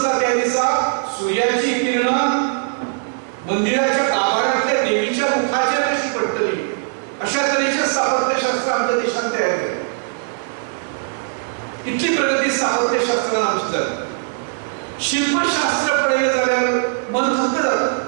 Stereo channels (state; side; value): silent; left; 62 dB below the other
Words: त्या दिसा सूर्याची किरणां मंदिराच्या गाभाऱ्यांतल्या देवीच्या मुखाचेर कशी पडटली अशा तरेचें स्थापत्यशास्त्र आमच्या देशांत तयार केलें. स्थापत्यशास्त्रान आमचे जालें. शिल्पशास्त्र पळयलें जाल्यार मन थक्क जाता.